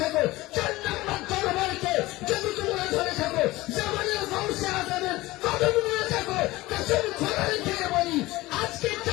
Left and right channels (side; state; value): right; quieter; 19.2 dB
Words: থাকো, 4 নম্বর দরবারকে যদি তোমরা ধরে থাকো, জামানের গৌসে আজমের কদম নিয়ে থাকো, কসম খোদার থেকে বলি আজকে